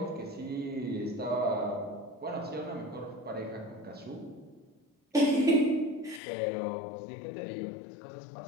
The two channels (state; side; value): drops out; right; at 6.2 s